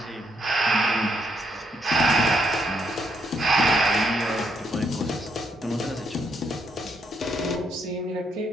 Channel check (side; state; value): both; normal; correlation 0.75